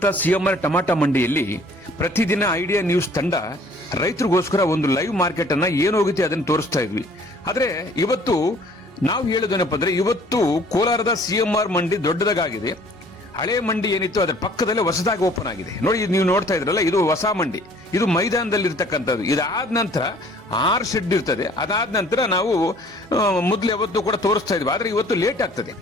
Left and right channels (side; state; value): both; normal; correlation 0.55